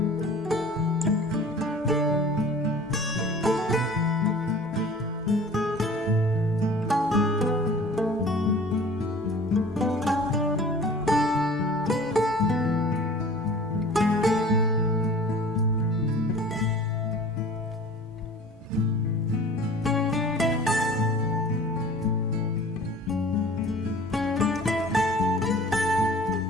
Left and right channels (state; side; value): normal; both; correlation 0.45